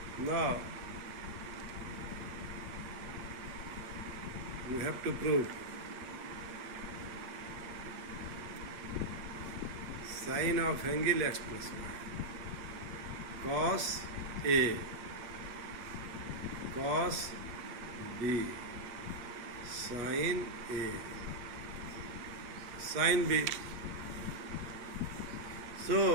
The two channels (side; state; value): left; late; 8.7 ms